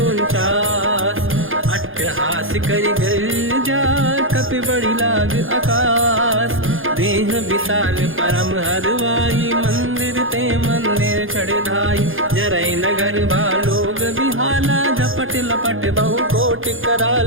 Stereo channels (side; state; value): left; late; 0.59 ms